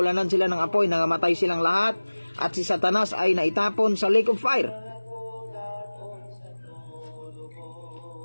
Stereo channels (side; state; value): both; inverted; correlation -1.00